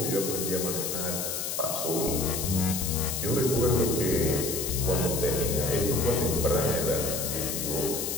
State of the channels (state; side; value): noise; left; hiss, 3 dB below the sound